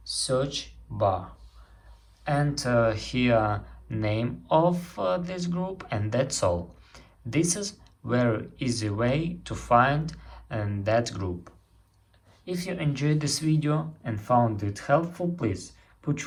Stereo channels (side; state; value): both; identical; correlation 1.00